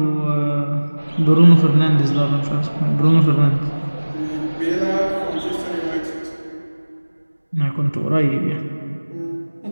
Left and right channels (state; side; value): inverted; both; correlation -1.00